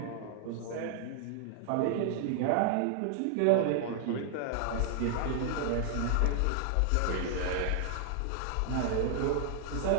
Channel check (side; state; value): both; different; correlation 0.00